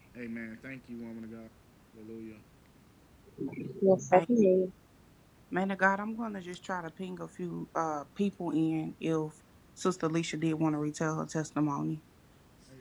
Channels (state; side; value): identical; both; correlation 1.00